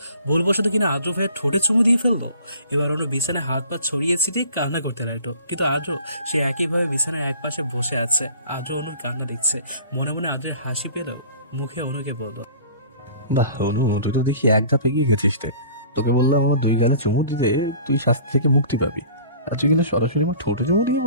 ভুলবশত কিনা আদ্র ভাইয়ের ঠোঁটে চুমু দিয়ে ফেললো। এবার অনু বিছানায় হাত পা ছড়িয়ে ছিটিয়ে কান্না করতে লাগলো, কিন্তু আদ্র সে একইভাবে বিছানায় এক পাশে বসে আছে। আদ্র অনুর কান্না দেখছে। মনে মনে আদ্রের হাসি পেল, মুখে অনুকে বলল, বাহ অনু, তুই তো দেখি এক ধাপ এগিয়ে গেছিস রে। তোকে বললাম আমার 2 গালে চুমু দিতে তুই শাস্তি থেকে মুক্তি পাবি, আর তুই কিন্তু সরাসরি আমার ঠোঁটে চুমু দিয়ে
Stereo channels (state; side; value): inverted; both; correlation -0.47